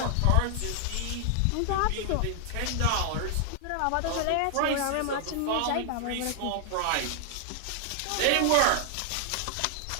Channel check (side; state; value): both; different; correlation 0.00